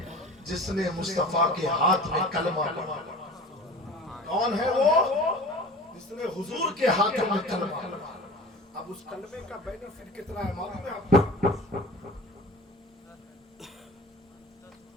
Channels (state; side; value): normal; both; correlation 0.39